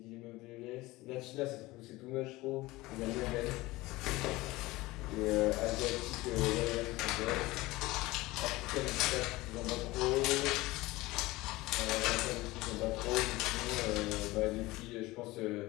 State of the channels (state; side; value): quieter; right; 19.9 dB